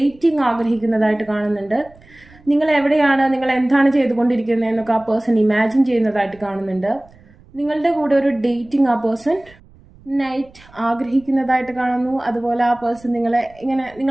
ആഗ്രഹിക്കുന്നതായിട്ട് കാണുന്നുണ്ട്. നിങ്ങൾ എവിടെയാണ്, നിങ്ങൾ എന്താണ് ചെയ്തുകൊണ്ടിരിക്കുന്നതെന്നൊക്കെ ആ പേഴ്സൺ ഇമാജിൻ ചെയ്യുന്നതായിട്ട് കാണുന്നുണ്ട്. നിങ്ങളുടെ കൂടെ ഒരു ഡേറ്റിംഗ് ആ പേഴ്സൺ നൈറ്റ് ആഗ്രഹിക്കുന്നതായിട്ട് കാണുന്നു. അതുപോലെ ആ പേഴ്സൺ നിങ്ങളെ ഇങ്ങനെ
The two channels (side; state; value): right; noise; rumble, 26 dB below the sound